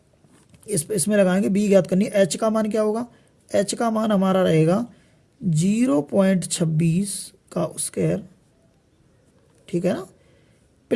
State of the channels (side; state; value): both; identical; correlation 1.00